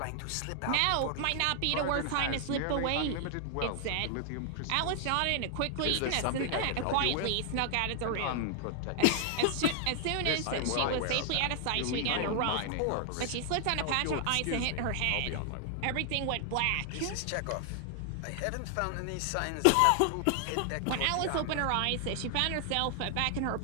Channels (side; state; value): both; different; correlation 0.00